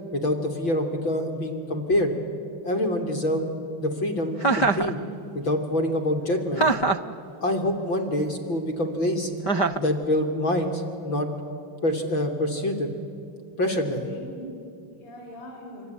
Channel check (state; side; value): late; right; 6.0 ms